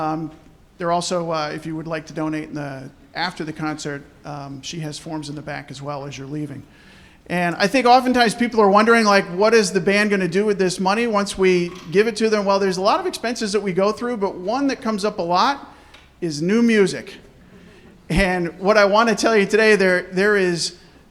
also, if you would like to donate after the concert, she has forms in the back as well as you're leaving. And I think oftentimes people are wondering, like, what is the band going to do with this money once we give it to them? Well, there's a lot of expenses that we go through, but one that comes up a lot is new music. And what I want to tell you today, there is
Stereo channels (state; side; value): identical; both; correlation 1.00